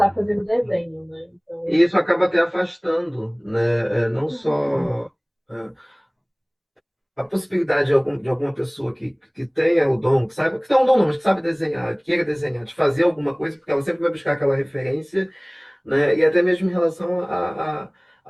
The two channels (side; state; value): both; identical; correlation 1.00